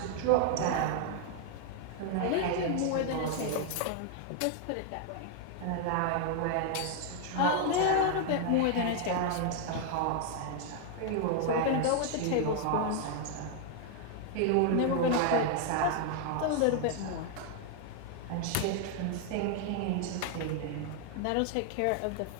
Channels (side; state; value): both; different; correlation 0.00